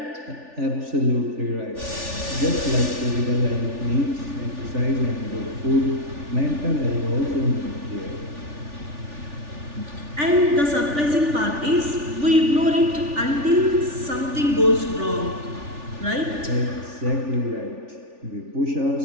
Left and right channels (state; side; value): late; left; 3.4 ms